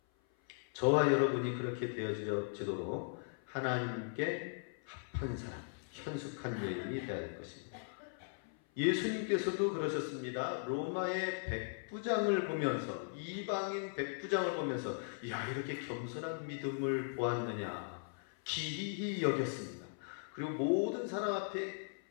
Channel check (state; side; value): silent; right; 52 dB below the other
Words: 저와 여러분이 그렇게 되어지도록 하나님께 합한 사람, 현숙한 여인이 되어야 될 것입니다. 예수님께서도 그러셨습니다. 로마의 백부장을 보면서, 이방인 백부장을 보면서 야, 이렇게 겸손한 믿음을 보았느냐 기이히 여겼습니다. 그리고 모든 사람 앞에